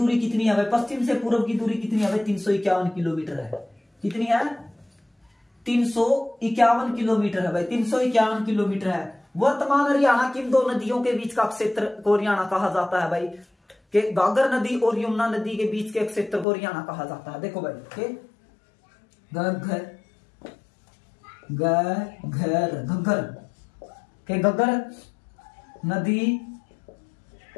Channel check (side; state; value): right; drops out; at 16.4 s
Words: कितनी है भाई? पश्चिम से पूर्व की दूरी कितनी है भाई? 351 किलोमीटर है। कितनी है? 351 किलोमीटर है भाई। 351 किलोमीटर है। वर्तमान हरियाणा की इन दो नदियों के बीच का क्षेत्र को हरियाणा कहा जाता है भाई। के गागर नदी और यमुना नदी के बीच के क्षेत्र को हरियाणा कहा जाता है। देखो भाई के घग्गर नदी